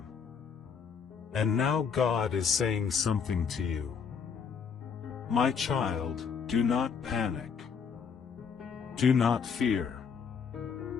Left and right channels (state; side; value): quieter; right; 6.3 dB